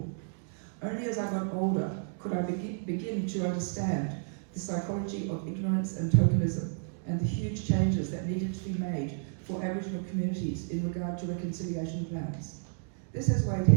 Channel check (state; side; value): silent; left; digital silence